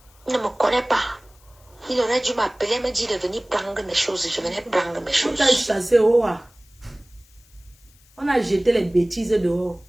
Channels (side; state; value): left; noise; hiss, 30 dB below the sound